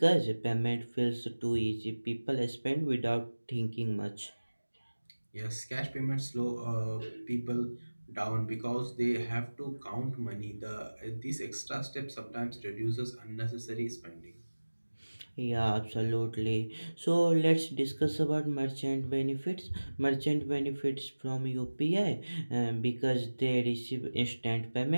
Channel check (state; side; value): inverted; both; correlation -1.00